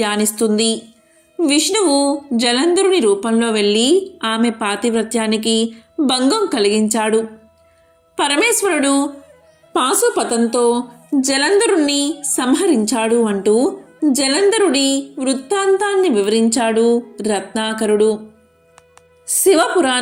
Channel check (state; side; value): identical; both; correlation 1.00